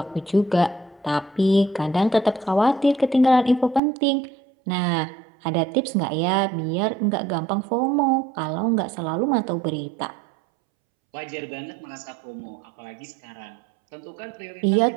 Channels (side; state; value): left; drops out; at 3.8 s